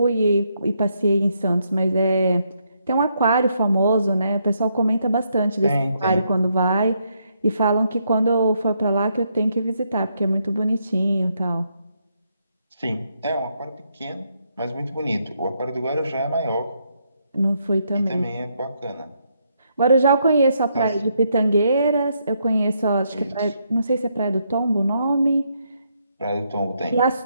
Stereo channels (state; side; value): inverted; both; correlation -0.77